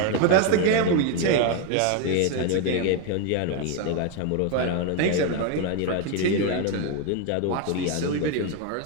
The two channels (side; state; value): both; different; correlation 0.01